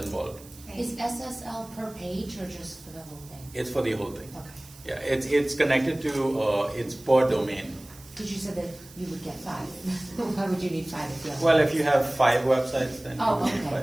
Is SSL per page or just for the whole thing? It's for the whole thing. Okay. Yeah, it's connected to it's per domain. Because you said that you would get 5. Why would you need 5 if you have? Well, if you have 5 websites, then Oh, you okay, need 5.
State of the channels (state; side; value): noise; right; hiss, 21 dB below the sound